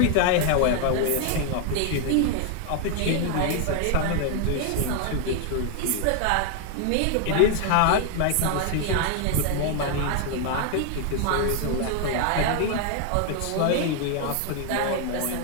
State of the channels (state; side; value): different; both; correlation 0.00